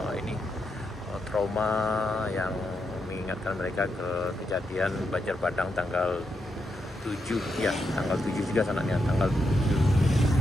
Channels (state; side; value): normal; both; correlation 0.83